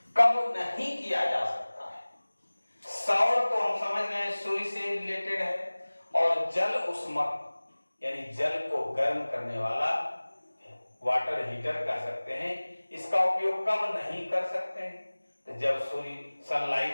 कब नहीं किया जा सकता है। सौर तो हम समझ रहे हैं सूर्य से रिलेटेड है और जल उष्मक यानी जल को गर्म करने वाला वाटर हीटर कह सकते हैं, इसका उपयोग कब नहीं कर सकते हैं, तो जब सूर्य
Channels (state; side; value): inverted; both; correlation -1.00